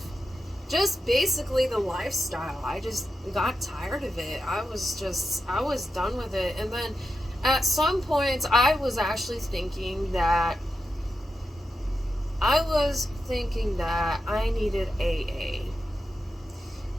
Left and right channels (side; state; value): both; normal; correlation 0.89